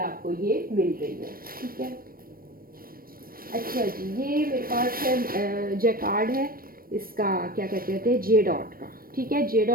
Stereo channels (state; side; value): late; left; 0.42 ms